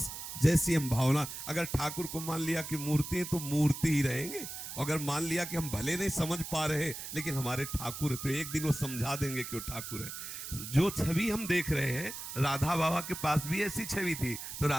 जैसी हम भावना, अगर ठाकुर को मान लिया कि मूर्ति है तो मूर्ति ही रहेंगे। अगर मान लिया कि हम भले नहीं समझ पा रहे लेकिन हमारे ठाकुर है, तो एक दिन वो समझा देंगे कि वो ठाकुर है। जो छवि हम देख रहे हैं, राधा बाबा के पास भी ऐसी छवि थी। तो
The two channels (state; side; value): noise; right; hiss, 8 dB below the sound